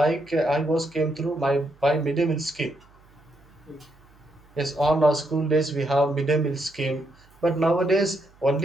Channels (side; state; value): right; noise; hum, 29 dB below the sound